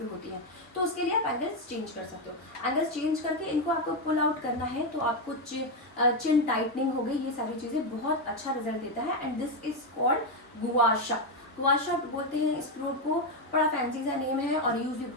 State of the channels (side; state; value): both; normal; correlation 0.06